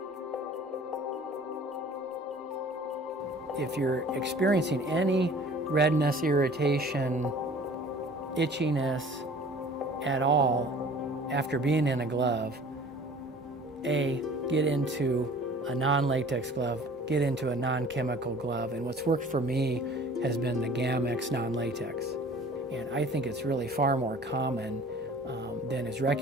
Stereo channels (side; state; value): both; normal; correlation 0.47